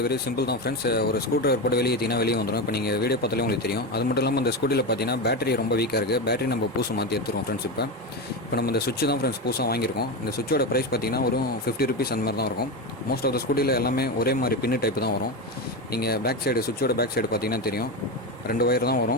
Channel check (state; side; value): normal; both; correlation 0.17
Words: வெரி சிம்பிள் தான் ஃப்ரெண்ட்ஸ். ஒரு ஸ்க்ரூ ட்ரைவர் போட்டு வெளியே ஏற்றினா வெளியே வந்துடும். இப்போ நீங்கள் வீடியோ பார்த்தாலே உங்களுக்கு தெரியும். அது மட்டும் இல்லாமல் இந்த ஸ்கூட்டியில் பார்த்தீங்கன்னா பேட்டரி ரொம்ப வீக்காக இருக்குது. பேட்டரி நம்ம பூசு மாற்றி எடுத்துருவோம் ஃப்ரெண்ட்ஸ். இப்போ நம்ம இந்த சுவிட்ச் தான் ஃப்ரெண்ட்ஸ் புதுசாக வாங்கியிருக்கோம். இந்த சுவிட்சோட ப்ரைஸ் பார்த்தீங்கன்னா ஒரு 50 ருபீஸ் அந்த மாதிரி தான் இருக்கும். மோஸ்ட் ஆஃப் த ஸ்கூட்டியில் எல்லாமே ஒரே மாதிரி பின்னு டைப் தான் வரும். நீங்கள் பேக் சைடு சுவிட்சோட பேக் சைடு பார்த்தீங்கன்னா தெரியும், 2 ஒயர் தான்